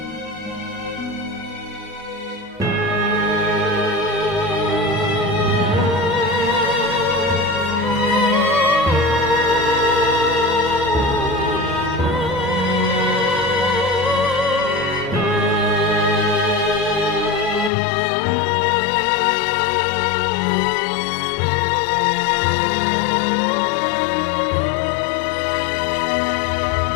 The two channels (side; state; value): right; drops out; at 17.7 s